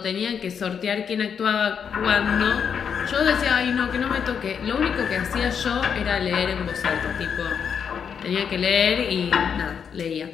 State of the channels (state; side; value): quieter; right; 7.1 dB